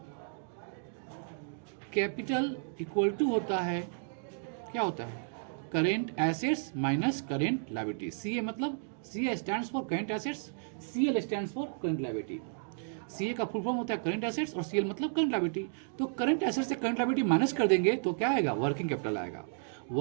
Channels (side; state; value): left; silent; digital silence